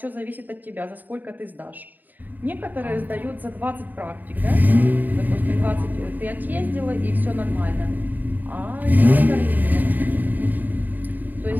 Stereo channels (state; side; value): late; left; 0.087 ms